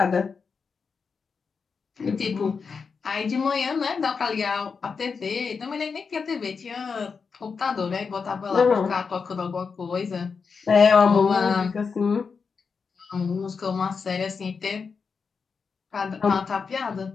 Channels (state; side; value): quieter; right; 5.4 dB